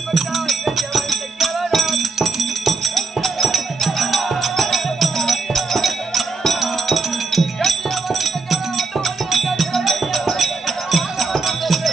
பட்டா வேண்டிய வரத்தை கேளடா.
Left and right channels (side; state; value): left; quieter; 4.2 dB